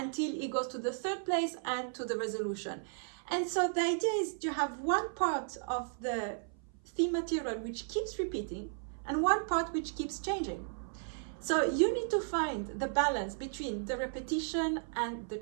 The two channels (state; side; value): silent; left; 55 dB below the other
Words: it goes to the 3rd place and to the resolution. And so the idea is you have one part of the theme material which keeps repeating and one part which keeps changing. So you need to find the balance between the repetition and the